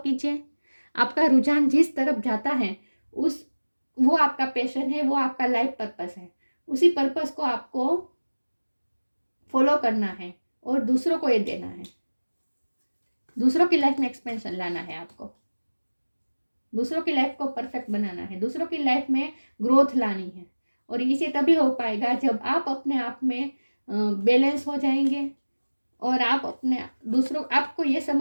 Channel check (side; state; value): both; inverted; correlation -1.00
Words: आपका रुझान जिस तरफ जाता है वो आपका पैशन है, वो आपका लाइफ पर्पस है, उसी पर्पस को आपको फॉलो करना है, और दूसरों को ये देना है। दूसरों की लाइफ में एक्सपेंशन लाना है आपको, दूसरों की लाइफ को परफेक्ट बनाना है, दूसरों की लाइफ में ग्रोथ लानी है। और इसे तभी हो पाएगा जब आप अपने आप में बैलेंस हो जाएंगे और आप अपने दूसरों, आपको ये